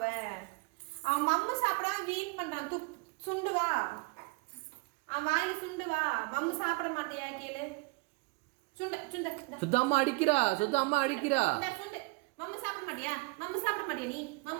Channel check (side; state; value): left; quieter; 27.9 dB